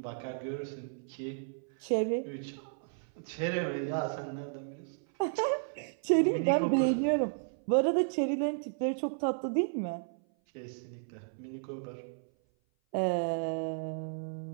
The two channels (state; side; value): silent; left; 56 dB below the other